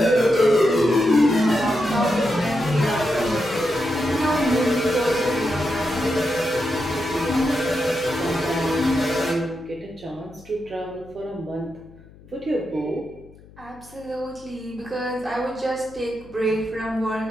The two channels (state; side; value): noise; left; hum, 23 dB below the sound